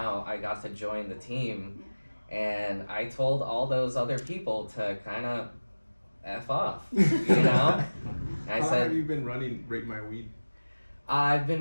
I got to join the team. And I told all those other people to kind of F off, you know? How long have you been running Rate My Weed? I've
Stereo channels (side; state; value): both; inverted; correlation -1.00